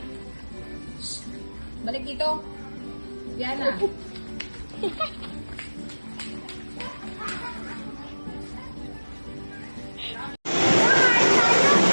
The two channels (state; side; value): inverted; both; correlation -1.00